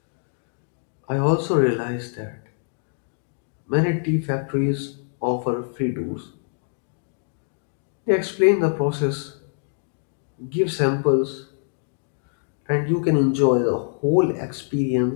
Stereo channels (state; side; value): silent; right; digital silence